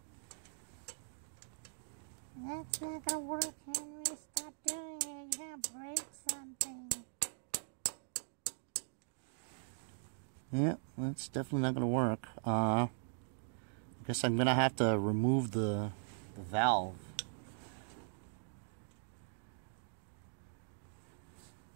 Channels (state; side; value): silent; left; digital silence